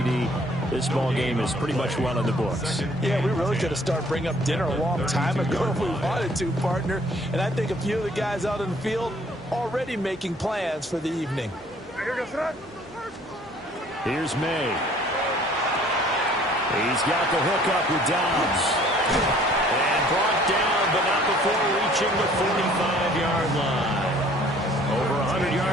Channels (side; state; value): both; normal; correlation 0.57